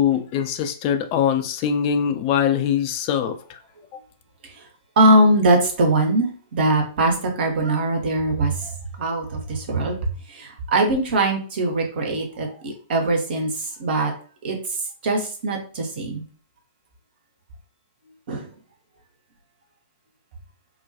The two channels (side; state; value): both; inverted; correlation -0.44